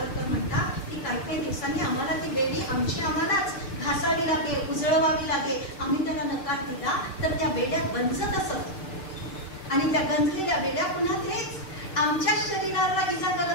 म्हणतात की काही दिवसांनी आम्हाला ती बेडी आम्हालाच घासावी लागेल, उजळवावी लागेल. आम्ही त्याला नकार दिला तर त्या बेड्या गंजत असत आणि त्या गंजलेल्या बेड्या पुन्हा तेच आमच्या शरीराला इजा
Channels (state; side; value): late; right; 6.7 ms